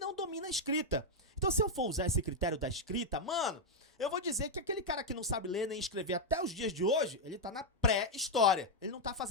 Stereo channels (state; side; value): normal; both; correlation 0.00